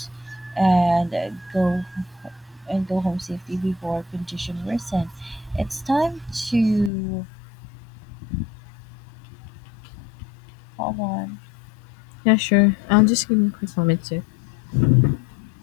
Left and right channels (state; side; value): drops out; right; at 6.9 s